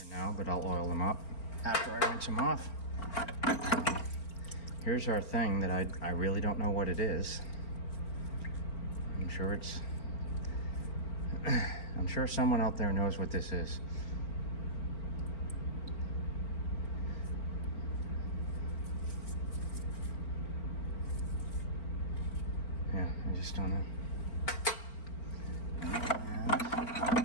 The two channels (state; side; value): late; right; 4.4 ms